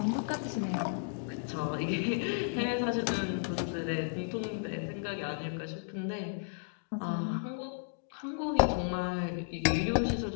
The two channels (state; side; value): silent; right; digital silence